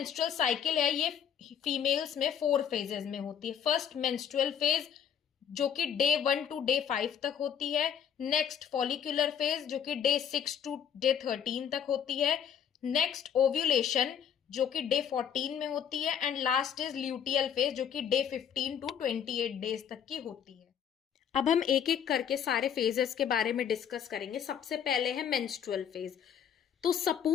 साइकिल है, ये फीमेल्स में 4 फेजेस में होती है। फर्स्ट मेंस्ट्रुअल फेज, जो कि डे 1 to डे 5 तक होती है। नेक्स्ट फॉलिकुलर फेज, जो कि डे 6 to डे 13 तक होती है। नेक्स्ट ओव्यूलेशन, जो कि डे 14 में होती है। And last is luteal phase, जो कि डे 15 to 28 डेज तक की होती है। अब हम एक एक करके सारे फेजेस के बारे में डिस्कस करेंगे। सबसे पहले है मेंस्ट्रुअल फेज। तो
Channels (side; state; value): right; quieter; 8.5 dB